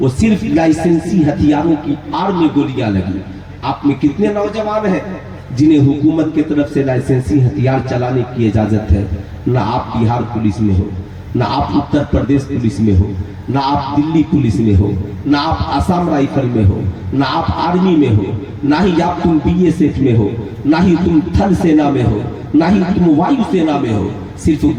वो सिर्फ लाइसेंसी हथियारों की आड़ में गोलियां लगी। आप में कितने नौजवान हैं जिन्हें हुकूमत की तरफ से लाइसेंसी हथियार चलाने की इजाजत है? ना आप बिहार पुलिस में हो, ना आप उत्तर प्रदेश पुलिस में हो, ना आप दिल्ली पुलिस में हो, ना आप आसाम राइफल में हो, ना आप आर्मी में हो, ना ही आप तुम बीएसएफ में हो, ना ही तुम थल सेना में हो, ना ही तुम वायु सेना में हो। सिर्फ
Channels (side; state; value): both; identical; correlation 1.00